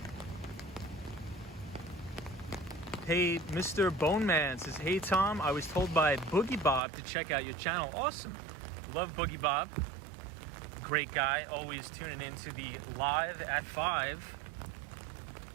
Hey, Mr. Bone Man says, hey Tom, I was told by Boogie Bob to check out your channel. Awesome. Love Boogie Bob. Great guy, always tuning into the live at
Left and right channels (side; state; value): left; drops out; at 6.8 s